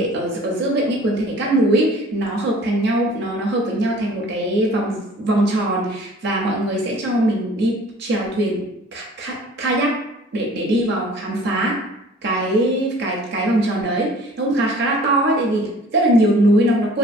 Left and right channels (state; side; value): normal; both; correlation 0.49